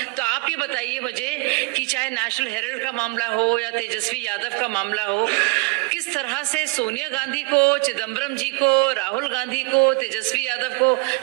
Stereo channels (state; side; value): quieter; left; 27.2 dB